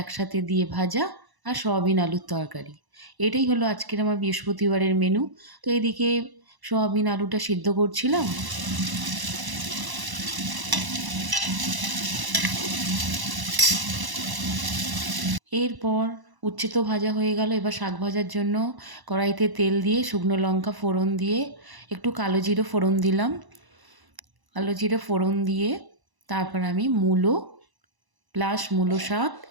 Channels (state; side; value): late; left; 1.0 ms